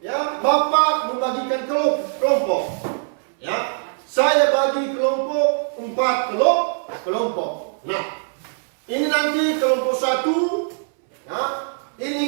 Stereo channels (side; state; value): left; silent; 64 dB below the other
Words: ya, Bapak membagikan kelompok. Ya, saya bagi kelompok 4 kelompok. Nah, ini nanti kelompok 1, ya,